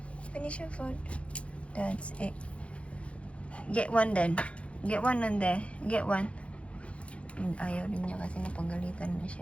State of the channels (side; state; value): right; late; 0.061 ms